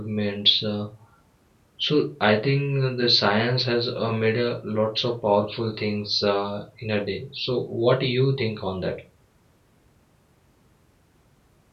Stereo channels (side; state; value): both; identical; correlation 1.00